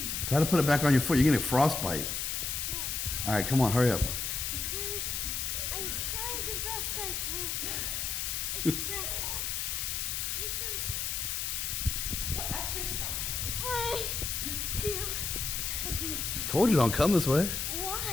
Try to put it back on your foot. You're getting frostbite. No, All right, come on. Hurry up. okay. I'm trying the best I can. It's just, this is Well, exercise. way too heavy. Told you don't come this way.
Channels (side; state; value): left; noise; hiss, 1 dB below the sound